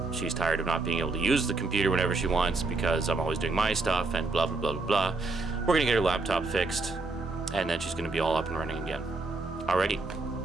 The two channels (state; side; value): quieter; left; 3.5 dB